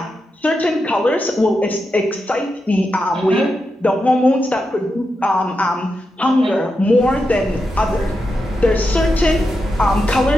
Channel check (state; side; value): normal; both; correlation 0.87